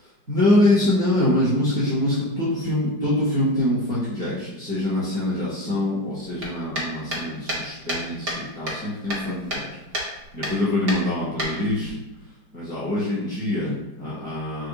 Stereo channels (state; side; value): late; left; 5.0 ms